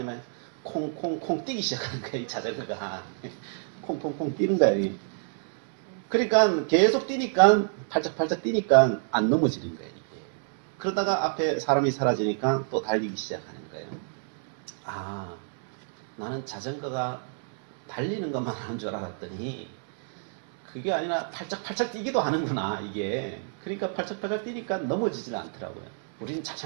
콩콩콩 뛰기 시작하는 거예요 이 자전거가. 콩콩콩 뛰는 거예요. 그러니까 계속 뛰니까 팔짝팔짝 뛰니까 안 넘어지는 거예요. 이게. 그러다가 앞에 사람이 사라지니까 또 달리기 시작하는 거예요. 아, 나는 자전거가 달리는 것만 하는 줄 알았더니 그게 아니라 팔짝팔짝 뛰기도 하는구나 이게. 그러니까 팔짝팔짝 뛰니까 넘어지지는 않더라고요. 우리는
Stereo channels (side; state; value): left; silent; digital silence